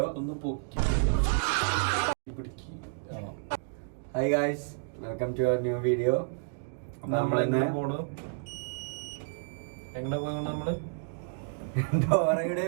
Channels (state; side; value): silent; left; digital silence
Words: Hi guys, welcome to our new video. നമ്മളെന്നെ എങ്ങനെ പോയി നമ്മള് ഡോറയുടെ